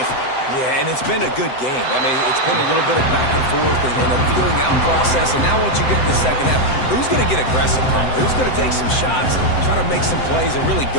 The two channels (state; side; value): late; right; 7.8 ms